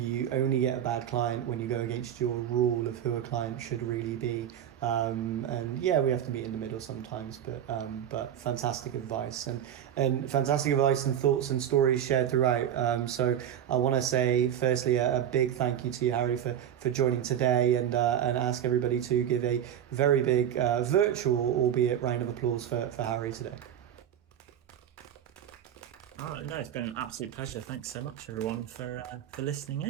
only get a bad client when you go against your rule of who a client should really be. And yeah, we have to meet in the middle sometimes, but fantastic advice and fantastic advice and thoughts and stories shared throughout. So I want to say firstly a big thank you to you, Harry, for joining today, and ask everybody to give a very big virtual, albeit round of applause for Harry today. Oh, no, it's been an absolute pleasure. Thanks so much, everyone, for listening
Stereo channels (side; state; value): left; quieter; 10.1 dB